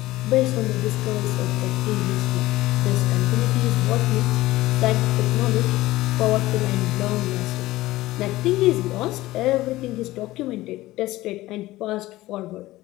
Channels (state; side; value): quieter; right; 17.5 dB